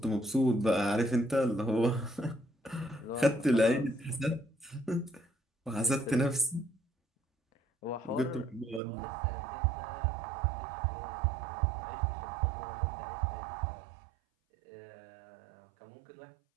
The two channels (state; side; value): drops out; left; at 8.8 s